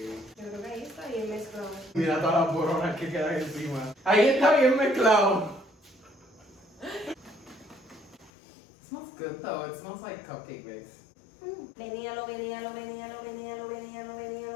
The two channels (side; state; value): right; drops out; at 8.3 s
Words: Yo creo que ahí está bien mezclado. Mira todas las boronas que quedan encima. Ahí está bien mezclado. It smells good though. It smells like cupcake mix. Veníalo, veníalo, veníalo, veníalo, veníalo,